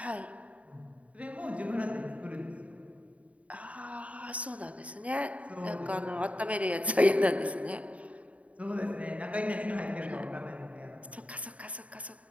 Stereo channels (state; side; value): late; left; 0.066 ms